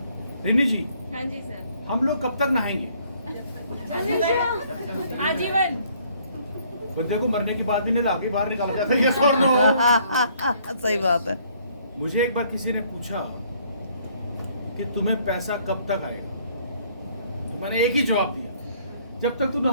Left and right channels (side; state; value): both; inverted; correlation -0.63